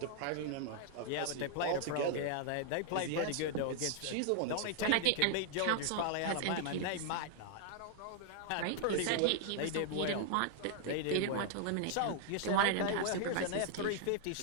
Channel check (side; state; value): both; different; correlation 0.00